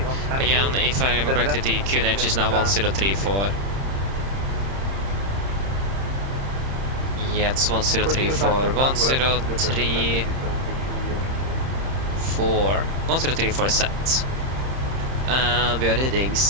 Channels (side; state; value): left; late; 30 ms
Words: Again, if I remember correctly, the QNH is now 1034. Yeah, it's 1034. 1034. 1034 is set. And we are reading